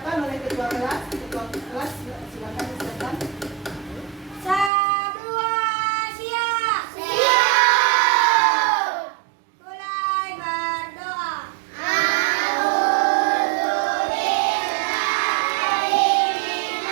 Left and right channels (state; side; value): drops out; left; at 4.7 s